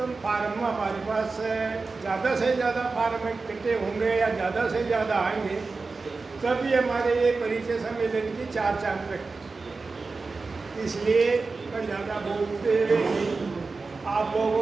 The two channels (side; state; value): left; quieter; 4.0 dB